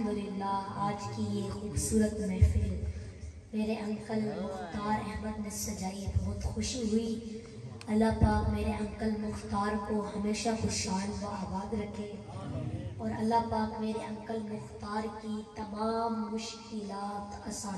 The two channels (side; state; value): both; identical; correlation 1.00